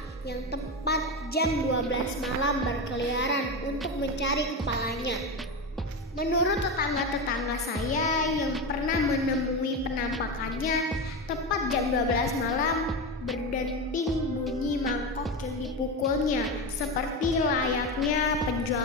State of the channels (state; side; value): normal; both; correlation 0.18